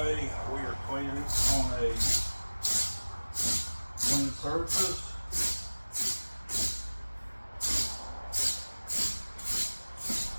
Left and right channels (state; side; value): inverted; both; correlation -1.00